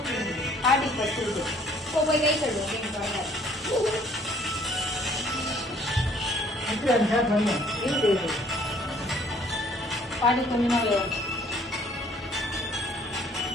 காட்டி படுத்துருக்கு போய் கை கழுவு பாட்டி கொஞ்சமா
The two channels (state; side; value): normal; both; correlation 0.59